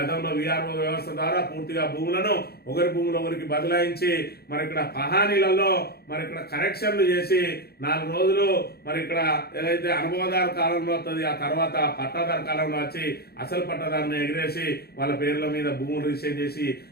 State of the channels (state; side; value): late; right; 0.46 ms